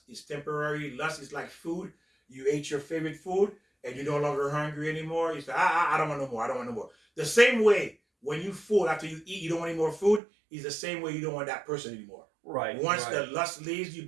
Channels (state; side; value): drops out; left; at 10.2 s